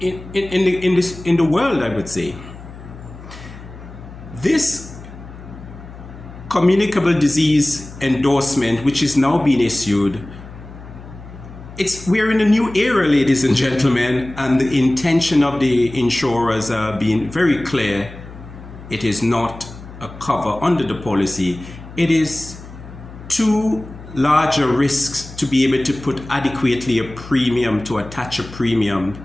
world, I would say. This communicable disease endorsement, which is now being issued, we're in a new era, ladies and gentlemen, and the intention of the insurers are being very clear. It is not a cover under the policy. It is too large a risk to be able to put adequately a premium, to attach a premium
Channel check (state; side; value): noise; left; hum, 16 dB below the sound